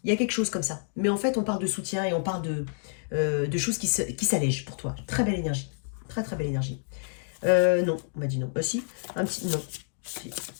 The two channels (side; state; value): right; silent; digital silence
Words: Il y a quelque chose comme ça. Mais en fait, on parle de soutien et on parle de choses qui s'allègent pour toi. Très belle énergie. Très très belle énergie. Non, on m'a dit non. Si, un petit non. Si.